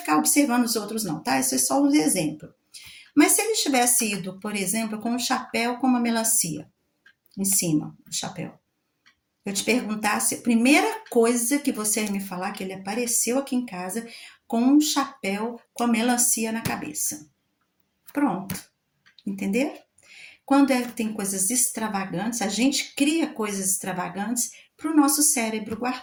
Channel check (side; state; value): both; identical; correlation 1.00